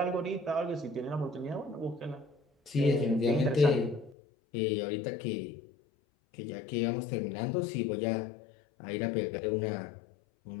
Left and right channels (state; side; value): drops out; right; at 4.2 s